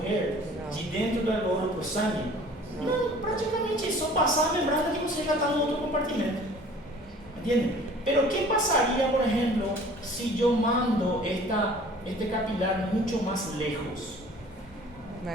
de dentro do alveolo para o sangue? Não, praticamente é só passar a membrana que você já está no outro compartimento. ¿Entienden? Pero ¿qué pasaría, por ejemplo, si yo mando este capilar mucho más lejos?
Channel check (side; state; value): both; normal; correlation 0.49